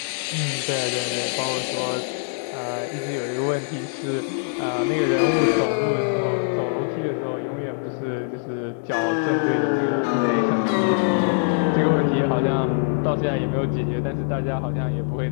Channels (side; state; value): right; silent; 63 dB below the other